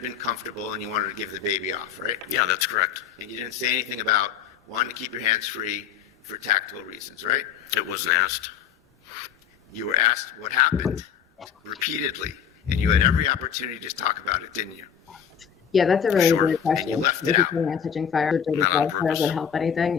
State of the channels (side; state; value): right; quieter; 8.3 dB